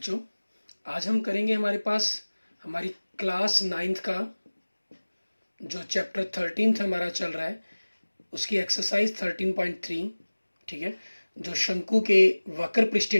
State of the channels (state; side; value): inverted; both; correlation -1.00